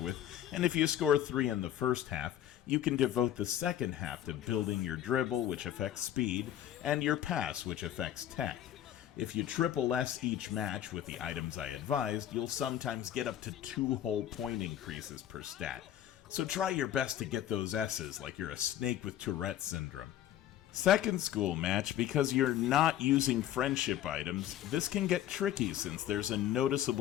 with, and if you score 3 in the first half, you can devote the second half to building your dribble, which affects speed, and your pass, which affects tech. If you triple S each match with the items I advised, you'll sometimes get up to 2 whole point increases per stat. So try your best to get those S's like you're a snake with Tourette syndrome. Second school match, because you're not using friendship items, this can get tricky since there's a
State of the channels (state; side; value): quieter; right; 11.6 dB